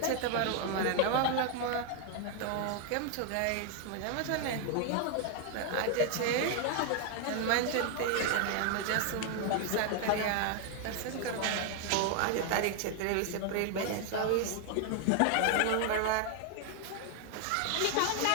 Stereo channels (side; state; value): both; different; correlation 0.00